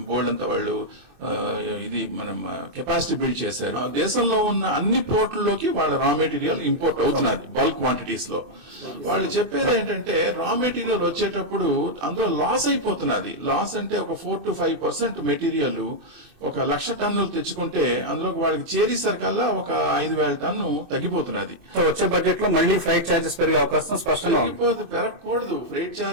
board అంతా వాళ్ళు ఇది మనం కెపాసిటీ బిల్డ్ చేశారు. దేశంలో ఉన్న అన్ని పోర్టుల్లోకి వాళ్ళ రా మెటీరియల్ ఇంపోర్ట్ అవుతున్నది బల్క్ క్వాంటిటీస్ లో. వాళ్ళు చెప్పేది ఏంటంటే రా మెటీరియల్ వచ్చేటప్పుడు అందులో లాస్ అయిపోతున్నది. లాస్ అంటే ఒక 4 to 5% మెటీరియల్ 1,00,000 టన్నులు తెచ్చుకుంటే అందులో వాళ్ళకి చేరేసరికల్లా ఒక 5,000 టన్ను తగ్గిపోతున్నది. వచ్చే బడ్జెట్ లో మళ్ళీ ఫ్రైట్ చార్జెస్ పెరిగే అవకాశం స్పష్టంగా పెరగకూడదు. ఫ్రైట్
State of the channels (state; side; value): late; left; 24 ms